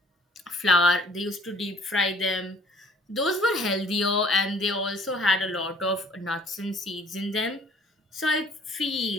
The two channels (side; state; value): both; normal; correlation 0.56